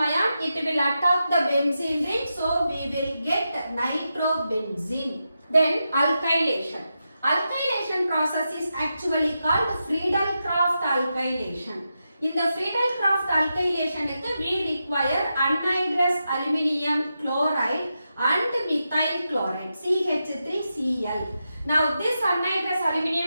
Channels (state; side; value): inverted; both; correlation -0.88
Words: ion it will attack the benzene ring, so we will get nitrobenzene. Then alkylation. Alkylation process is actually called Friedel-Crafts alkylation. In the Friedel-Crafts alkylation we require anhydrous aluminium chloride and methyl chloride CH3Cl. Now this anhydrous